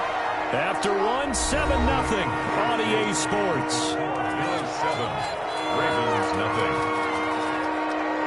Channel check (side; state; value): both; identical; correlation 1.00